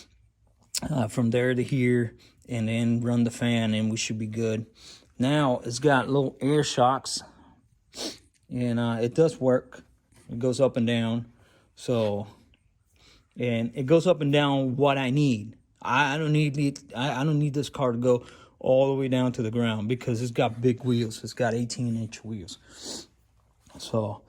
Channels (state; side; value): identical; both; correlation 1.00